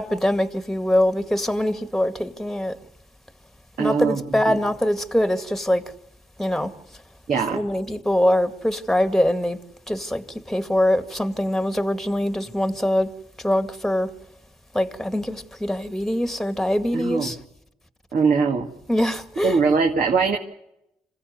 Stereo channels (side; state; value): both; normal; correlation 0.89